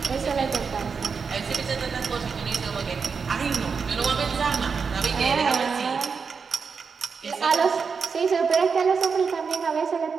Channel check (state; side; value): quieter; left; 5.6 dB